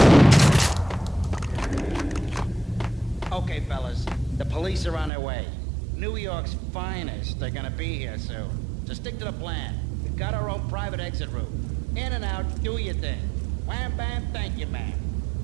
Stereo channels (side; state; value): left; drops out; at 5.1 s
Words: Okay, fellas. The police are on their way. New York's finest are gonna be here soon. So stick to the plan. We've got our own private exit route. In and out, do your thing. Wham bam, thank you, ma'am.